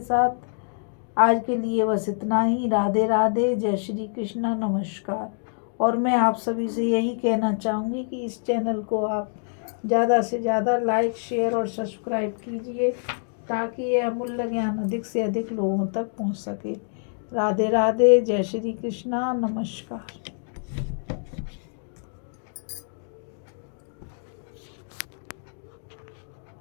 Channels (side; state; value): right; silent; digital silence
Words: आज के लिए बस इतना ही। राधे राधे, जय श्री कृष्णा, नमस्कार। और मैं आप सभी से यही कहना चाहूँगी कि इस चैनल को आप ज़्यादा से ज़्यादा लाइक शेयर और सब्सक्राइब कीजिए ताकि यह अमूल्य ज्ञान अधिक से अधिक लोगों तक पहुँच सके। राधे राधे, जय श्री कृष्णा, नमस्कार।